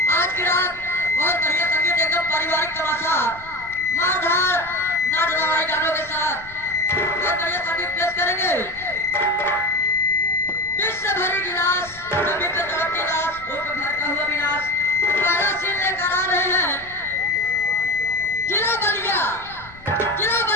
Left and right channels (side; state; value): left; noise; rumble, 21 dB below the sound